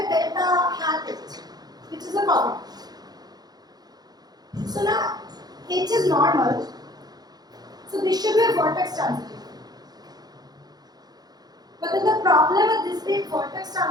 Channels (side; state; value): left; late; 0.19 ms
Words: delta hat H, which is a cofactor. So now H is normal. So this should be a vertex transitive. But then the problem with this being vertex